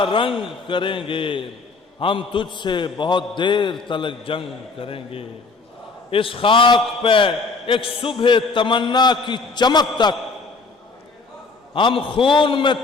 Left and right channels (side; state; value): right; quieter; 4.1 dB